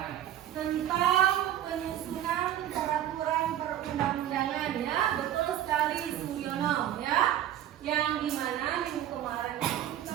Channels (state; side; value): quieter; left; 11.8 dB